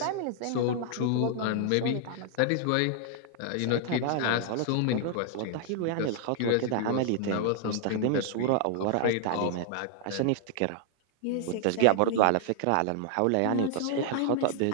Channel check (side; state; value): both; different; correlation -0.01